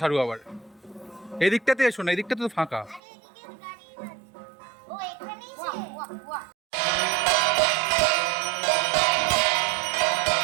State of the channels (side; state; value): left; drops out; at 3.0 s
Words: সারু আবার। এদিকটাতে এসো না, এদিকটাতে তো ফাঁকা।